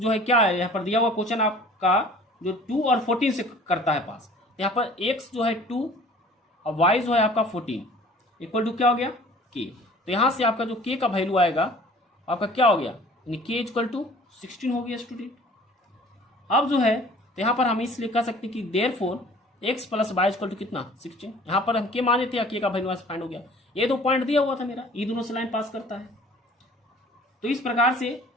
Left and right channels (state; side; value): normal; both; correlation 0.49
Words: है क्या है, यहाँ पर दिया हुआ क्वेश्चन आपका जो 2 और 14 से करता है पास, यहाँ पर x जो है 2 और y जो है आपका 14 = क्या हो गया k। तो यहाँ से आपका जो k का वैल्यू आएगा आपका क्या हो गया, यानी k = 16 हो गया स्टूडेंट। अब जो है तो यहाँ पर हम इसलिए कह सकते हैं कि देयरफॉर x + y = कितना 16, यहाँ पर हम k माने थे, k का वैल्यू फाइंड हो गया। ये 2 पॉइंट दिया हुआ था मेरा, ये दोनों से लाइन पास करता है। तो इस प्रकार से